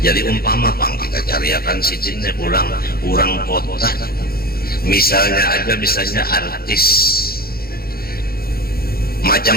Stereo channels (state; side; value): late; right; 0.44 ms